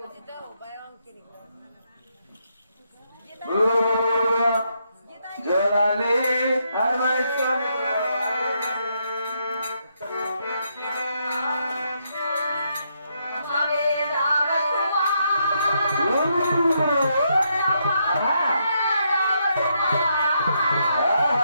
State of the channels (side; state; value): both; inverted; correlation -0.78